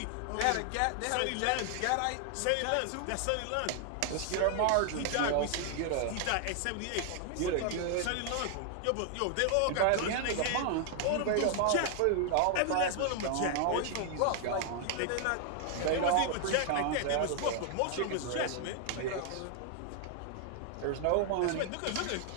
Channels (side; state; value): both; different; correlation 0.00